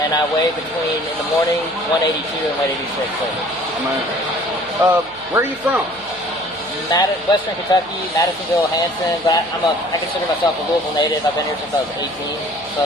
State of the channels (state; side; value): noise; right; hum, 27 dB below the sound